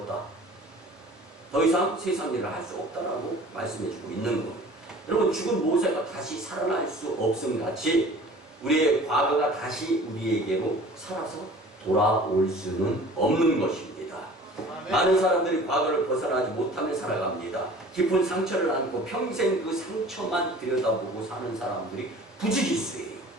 더 이상 세상 일을 할 수 없다라고 말씀해주고 있는 거예요. 여러분, 죽은 모세가 다시 살아날 수 없음 같이 우리의 과거가 다시 우리에게로 살아서 돌아올 수는 없는 것입니다. 많은 사람들이 과거를 벗어나지 못하며 살아갑니다. 깊은 상처를 안고 평생 그 상처만 들여다보고 사는 사람들이 부지기수예요.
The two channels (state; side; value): normal; both; correlation 0.46